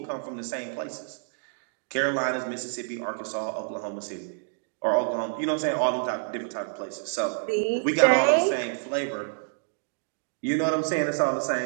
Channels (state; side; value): silent; left; digital silence